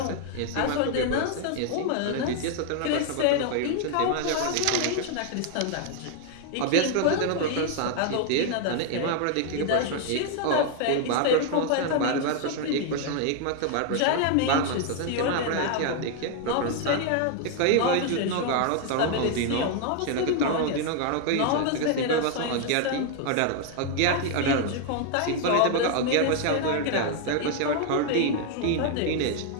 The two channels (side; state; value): both; different; correlation 0.00